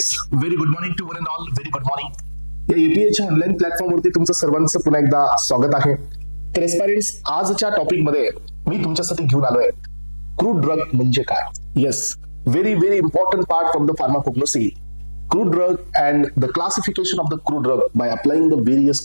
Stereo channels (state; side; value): inverted; both; correlation -1.00